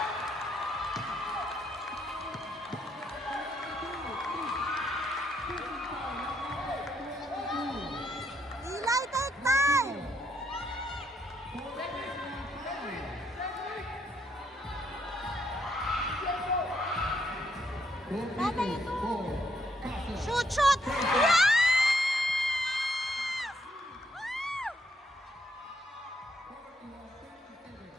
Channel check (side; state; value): both; normal; correlation 0.74